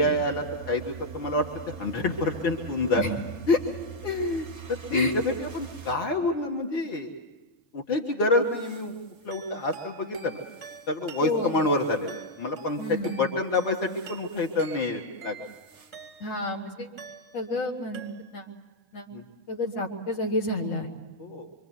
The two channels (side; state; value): right; late; 4.4 ms